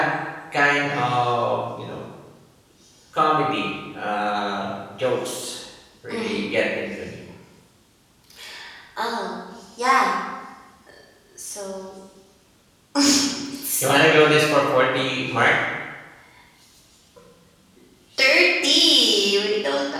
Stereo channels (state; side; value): identical; both; correlation 1.00